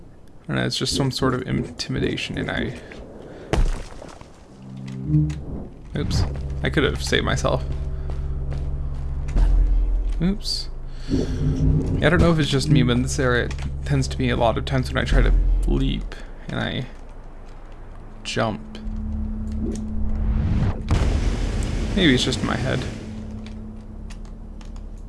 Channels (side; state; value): both; identical; correlation 1.00